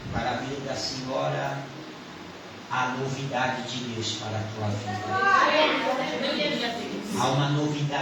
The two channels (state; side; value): identical; both; correlation 1.00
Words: para a vida da senhora a novidade de Deus para a tua vida. Há uma